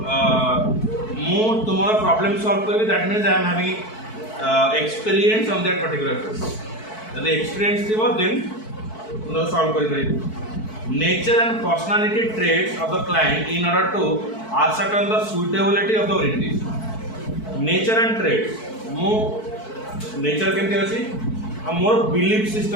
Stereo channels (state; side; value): late; right; 4.6 ms